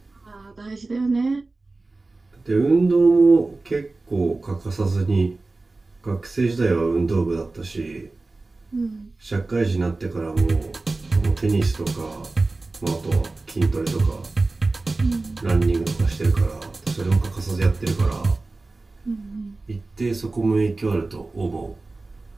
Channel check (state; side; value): quieter; left; 3.4 dB